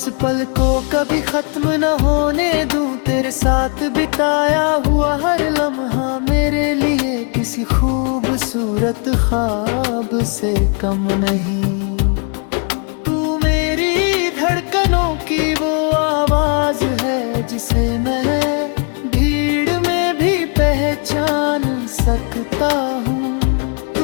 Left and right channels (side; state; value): right; quieter; 38.8 dB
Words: पल को कभी खत्म न होने दूं। तेरे साथ बिताया हुआ हर लम्हा मेरे लिए किसी खूबसूरत ख्वाब से कम नहीं। तू मेरी धड़कनों की वो आवाज है जिसे मैं भीड़ में भी पहचान सकता हूँ।